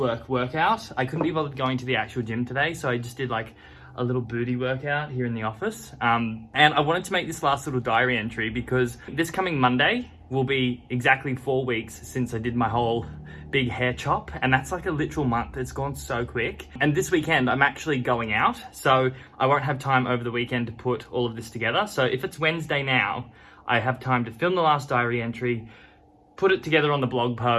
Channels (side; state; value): both; identical; correlation 1.00